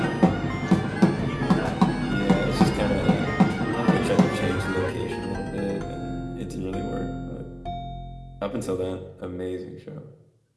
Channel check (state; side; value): identical; both; correlation 1.00